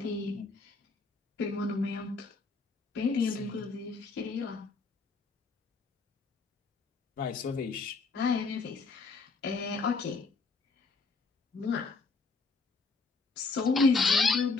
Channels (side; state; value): right; quieter; 4.2 dB